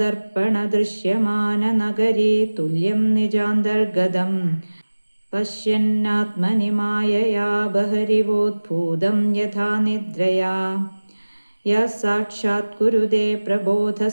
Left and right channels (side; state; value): both; inverted; correlation -1.00